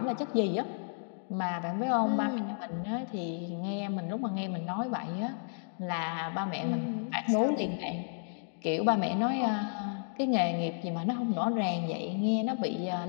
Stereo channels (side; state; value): right; silent; digital silence